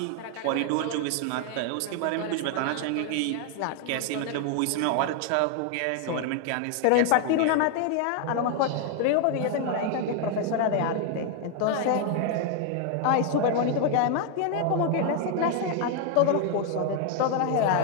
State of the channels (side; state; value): both; different; correlation 0.00